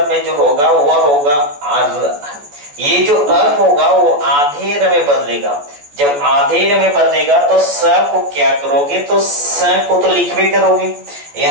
में जो होगा वह होगा आर। ये जो अ होगा वो आधे र में बदलेगा, जब आधे र में बदलेगा तो स को क्या करोगे, तो स को तो लिखवे करोगे,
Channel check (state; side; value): late; left; 14 ms